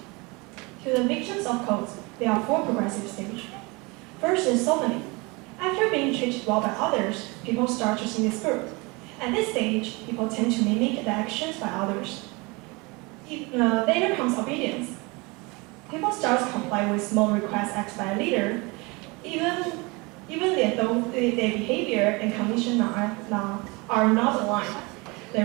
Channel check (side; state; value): left; quieter; 26.6 dB